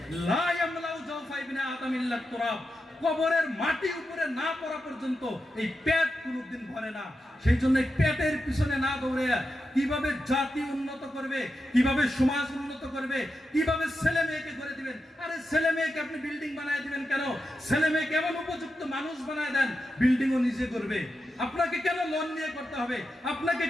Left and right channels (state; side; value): normal; both; correlation 0.89